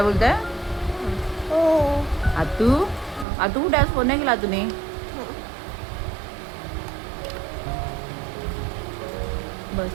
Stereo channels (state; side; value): drops out; left; at 3.2 s